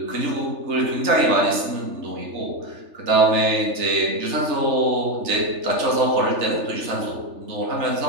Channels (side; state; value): left; late; 3.3 ms